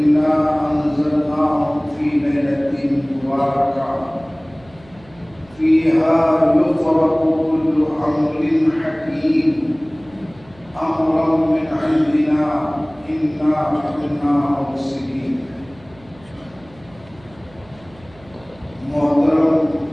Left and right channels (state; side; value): noise; right; hum, 25 dB below the sound